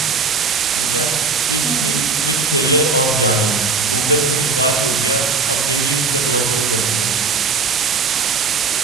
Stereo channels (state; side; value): quieter; left; 4.7 dB